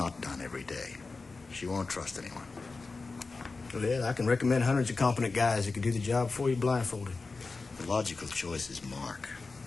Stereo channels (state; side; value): quieter; right; 3.9 dB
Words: done every day. She won't trust anyone. Well, I can recommend hundreds of competent guys that can do the job for you blindfolded. The logical choice is Mark.